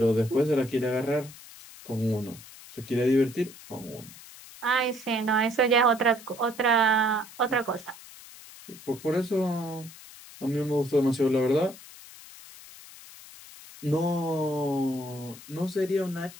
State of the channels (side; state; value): left; noise; hiss, 18 dB below the sound